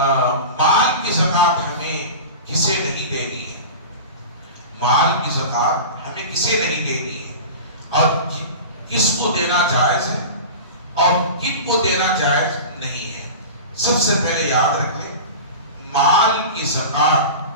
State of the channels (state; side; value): inverted; both; correlation -0.31